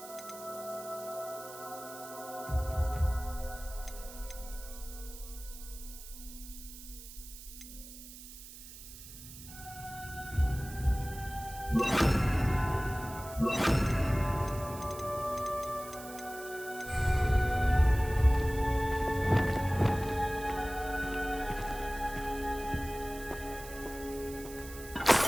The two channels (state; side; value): noise; right; hiss, 15 dB below the sound